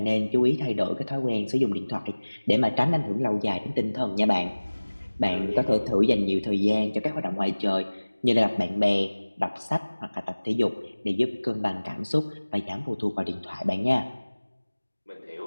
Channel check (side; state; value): both; inverted; correlation -1.00